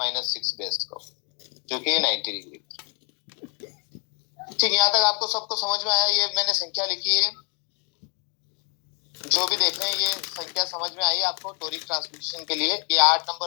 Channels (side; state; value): right; quieter; 39.1 dB